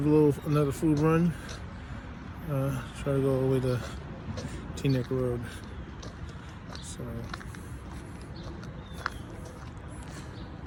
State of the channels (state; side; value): identical; both; correlation 1.00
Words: another food run. Try to go all the way to Teaneck Road. So